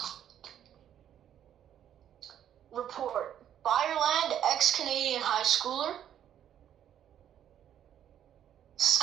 Report. Fireland, ex-Canadian high schooler.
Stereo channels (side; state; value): left; quieter; 10.2 dB